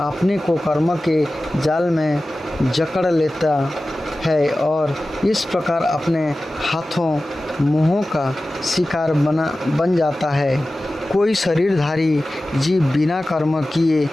को कर्म के जाल में जकड़ लेता है और इस प्रकार अपने हाथों मुँहों का शिकार बन जाता है। कोई शरीरधारी जीव बिना कर्म किए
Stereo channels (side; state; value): both; normal; correlation 0.96